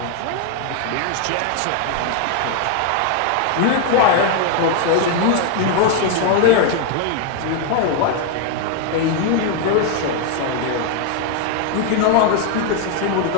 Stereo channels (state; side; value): different; both; correlation 0.01